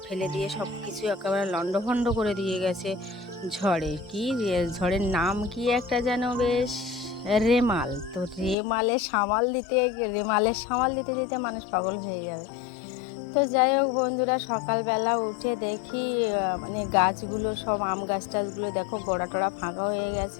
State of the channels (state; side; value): drops out; right; at 8.6 s